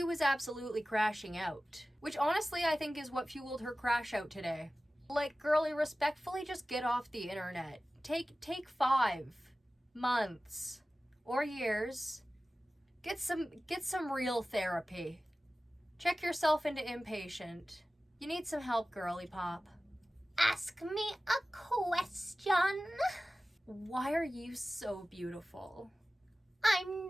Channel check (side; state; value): both; normal; correlation 0.96